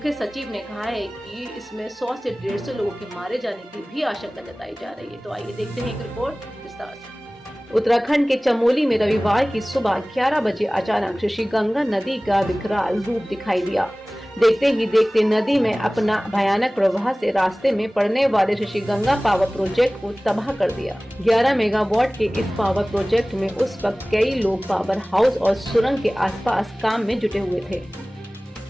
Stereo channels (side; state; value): both; normal; correlation 0.98